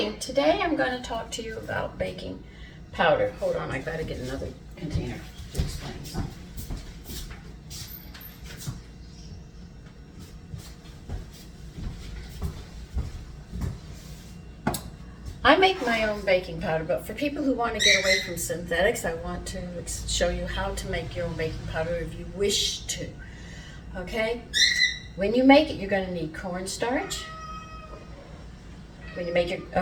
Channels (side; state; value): both; identical; correlation 1.00